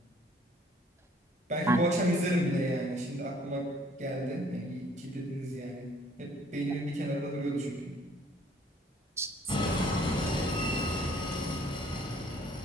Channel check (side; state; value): both; normal; correlation 0.59